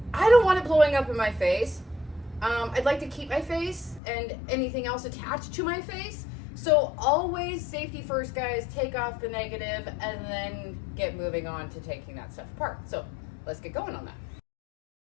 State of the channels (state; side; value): drops out; right; at 4.0 s